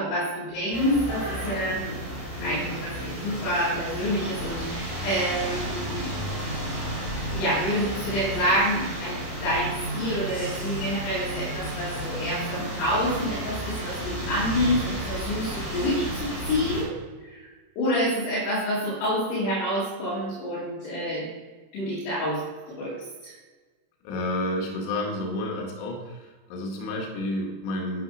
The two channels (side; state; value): right; late; 31 ms